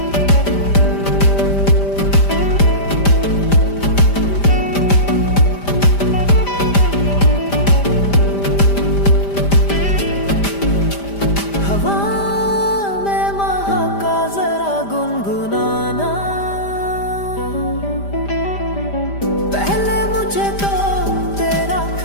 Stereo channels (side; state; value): right; late; 5.0 ms